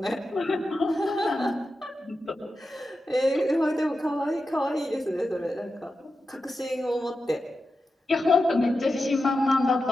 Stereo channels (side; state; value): both; normal; correlation 0.90